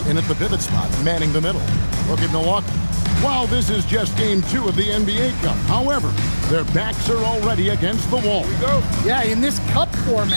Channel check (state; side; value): inverted; both; correlation -1.00